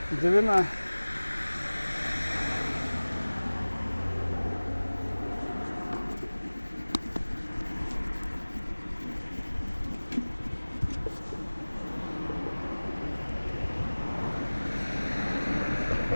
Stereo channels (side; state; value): both; inverted; correlation -1.00